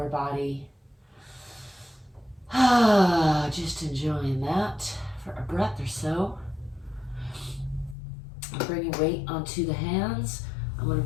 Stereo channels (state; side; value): drops out; right; at 8.0 s